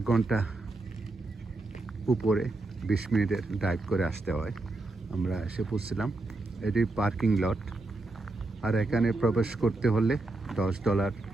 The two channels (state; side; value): quieter; left; 3.1 dB